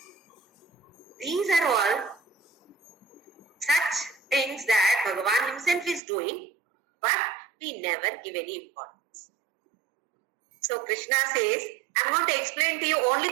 These are all such things that Bhagavan himself is doing, but we never give any importance. So Krishna says, I'm going to explain to you only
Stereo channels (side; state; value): left; drops out; at 6.0 s